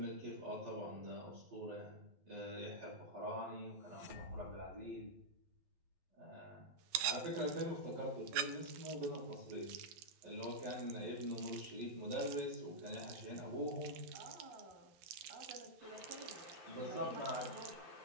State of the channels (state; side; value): late; left; 12 ms